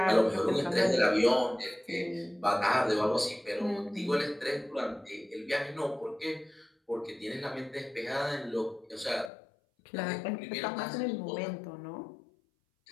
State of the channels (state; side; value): drops out; right; at 9.3 s